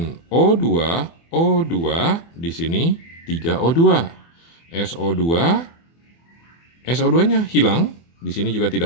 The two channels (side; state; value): right; late; 24 ms